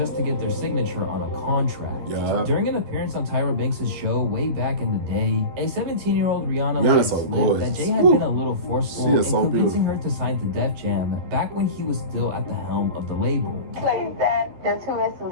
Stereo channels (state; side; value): late; left; 11 ms